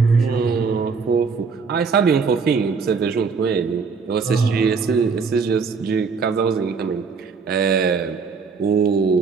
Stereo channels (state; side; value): quieter; left; 5.2 dB